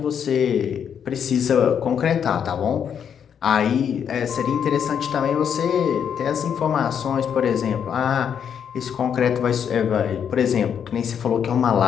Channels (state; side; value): quieter; right; 8.0 dB